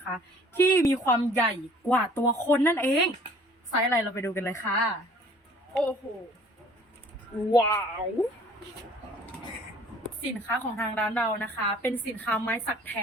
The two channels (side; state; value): both; normal; correlation 0.53